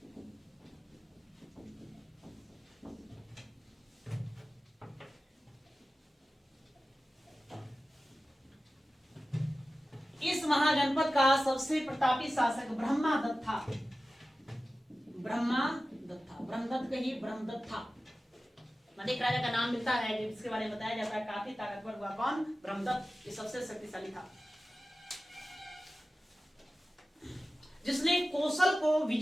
इस महाजनपद का सबसे प्रतापी शासक ब्रह्मदत्त था। ब्रह्मदत्त कहिए, ब्रह्मदत्त था। एक राजा का नाम मिलता है जिसके बारे में बताया जाता है काफी ताकतवर हुआ। कौन? ब्रह्मदत्त। ये सबसे शक्तिशाली था। जिसने कोसल को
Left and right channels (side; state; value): both; normal; correlation 0.95